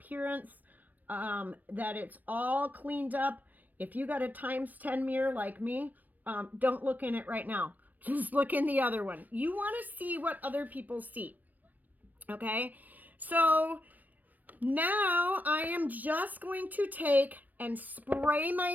that it's all cleaned up. If you got a ×10 mirror like me, don't look in it right now. Just look in the other one. You want to see what other people see. Okay? So now I am just going to take and spray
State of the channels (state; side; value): late; left; 0.084 ms